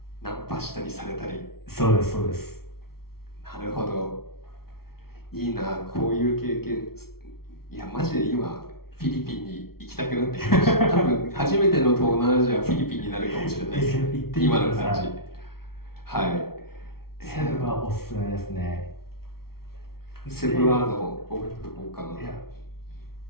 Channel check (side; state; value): right; late; 0.94 ms